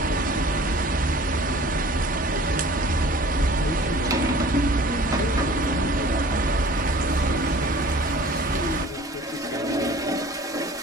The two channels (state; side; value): normal; both; correlation 0.47